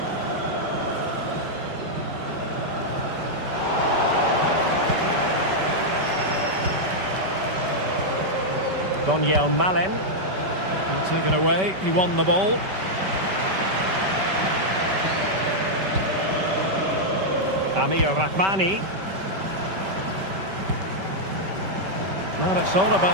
Daniel Malen. And taken away, he won the ball. Amir Rahmani. Well, it's all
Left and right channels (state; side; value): late; left; 5.2 ms